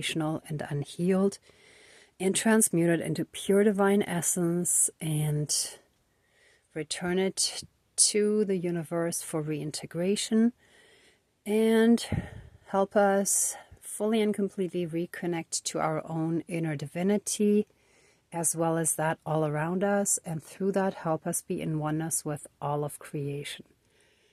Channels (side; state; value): both; identical; correlation 1.00